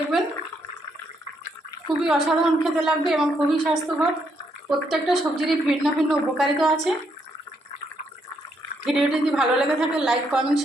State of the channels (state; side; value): normal; both; correlation 0.75